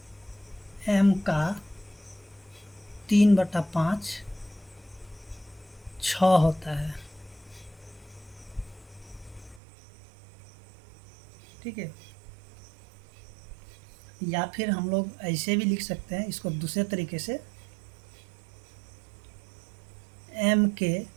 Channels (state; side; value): drops out; left; at 9.6 s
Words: m का 3/5 6 होता है, ठीक है। या फिर हम लोग ऐसे भी लिख सकते हैं इसको दूसरे तरीके से, m के